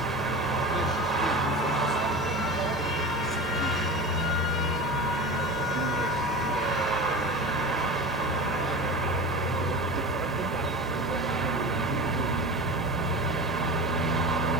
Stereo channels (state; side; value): normal; both; correlation 0.31